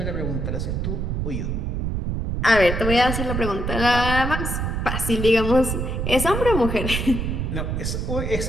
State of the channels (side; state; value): right; noise; rumble, 2 dB below the sound